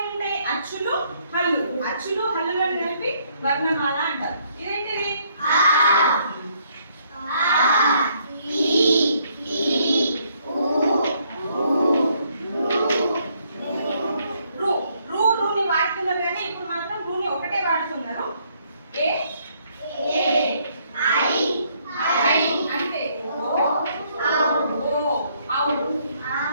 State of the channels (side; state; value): both; inverted; correlation -0.69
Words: అచ్చులు, హల్లు. అచ్చులు, హల్లులను కలిపి వర్ణమాల అంటారు. ఇదేంటిది? రూని వాడుతున్నారు కానీ ఇప్పుడు మాత్రం రూని ఒకటే వాడుతున్నారు. ఏ అంటే